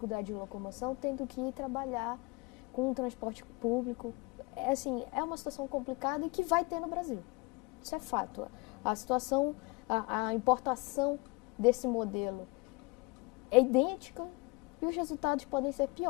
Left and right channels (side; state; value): right; quieter; 26.9 dB